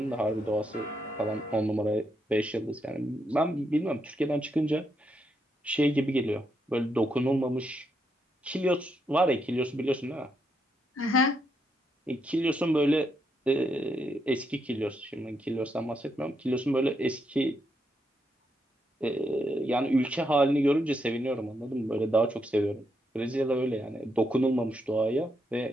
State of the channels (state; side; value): normal; both; correlation 0.80